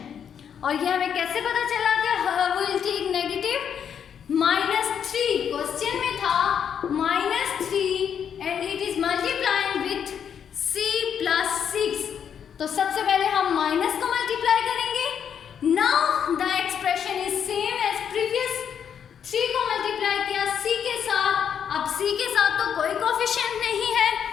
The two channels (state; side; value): quieter; right; 8.1 dB